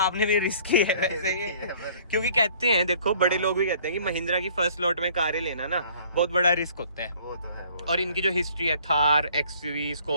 भी रिस्क ही है वैसे ये, क्योंकि कहते हैं देखो बड़े लोग भी कहते हैं कि महिंद्रा की फर्स्ट लॉट में कारें लेना ना बहुत बड़ा रिस्क होता है। वो तो है वो। और इनकी जो हिस्ट्री है, थार, XUV,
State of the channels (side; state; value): both; inverted; correlation -0.56